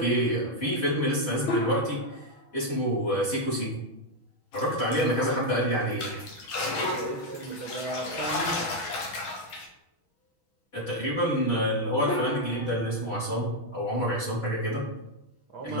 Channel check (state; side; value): late; right; 6.2 ms